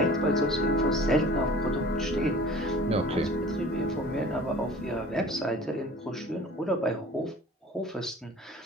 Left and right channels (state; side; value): normal; both; correlation 0.45